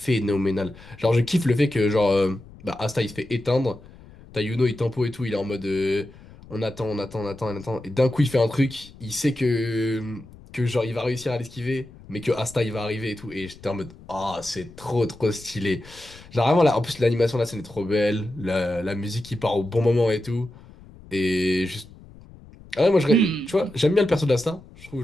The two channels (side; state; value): left; noise; rumble, 21 dB below the sound